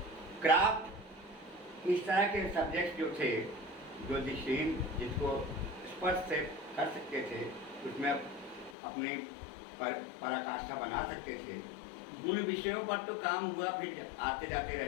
क्राफ्ट, इस तरह के सब्जेक्ट जो थे, जो दृष्टिहीन जिसको स्पर्श से कर सकते थे, उसमें अपनी पराकाष्ठा बना सकते थे, उन विषयों पर तो काम हुआ, फिर आते जाते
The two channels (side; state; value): right; drops out; at 8.8 s